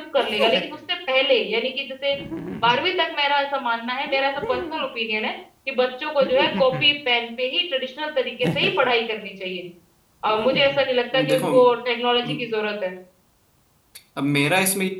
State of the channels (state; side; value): identical; both; correlation 1.00